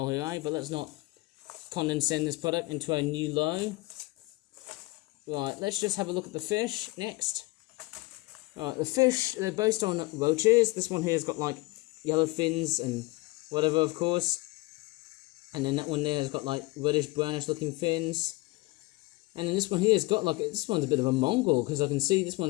here, eh? But let's not condensate this product into a new low. Right, let's just have a look at the fish next. Alright, the fish, they're based on roaches. This one here has got like yellow fins and whatever, of course. And then that one there has got like reddish brownish looking fins. And then this one here has got like, this one's a bit of a Mongol, because I can see this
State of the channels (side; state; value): right; quieter; 22.3 dB